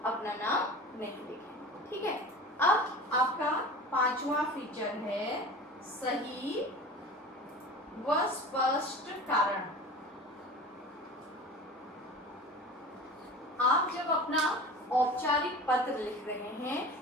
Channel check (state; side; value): normal; both; correlation 0.36